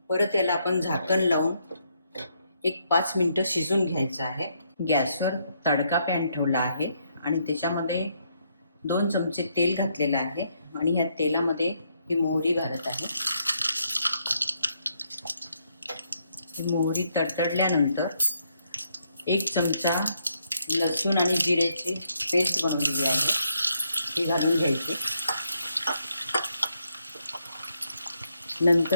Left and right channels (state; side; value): inverted; both; correlation -0.75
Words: परत याला आपण झाकण लावून एक 5 मिनिटं शिजून घ्यायचं आहे. गॅसवर तडका पॅन ठेवला आहे आणि त्याच्यामध्ये 2 चमचे तेल घातलेलं आहे आणि ह्या तेलामध्ये ही मोहरी घालत आहे. ही मोहरी तडतडल्यानंतर 1 चमचा लसूण आणि जिऱ्याची पेस्ट बनवलेली आहे ती घालून घ्यायची.